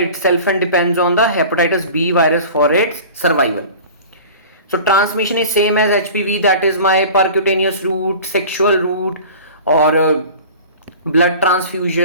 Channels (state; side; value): inverted; both; correlation -0.39